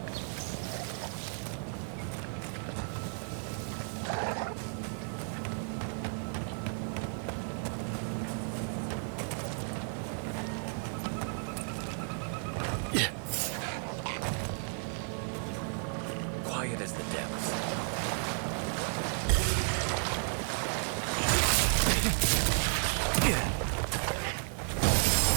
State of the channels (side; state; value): left; silent; 56 dB below the other